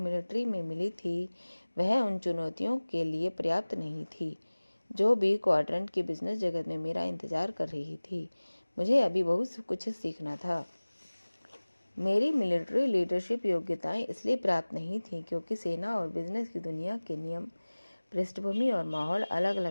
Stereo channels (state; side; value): inverted; both; correlation -1.00